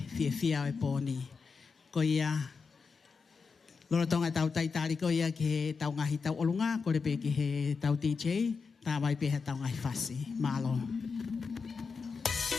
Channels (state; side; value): quieter; right; 5.1 dB